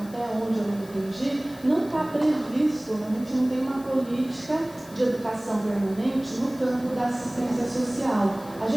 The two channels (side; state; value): left; noise; hiss, 22 dB below the sound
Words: onde eu entendi, não está previsto, a gente não tem uma política de educação permanente no campo da assistência social. A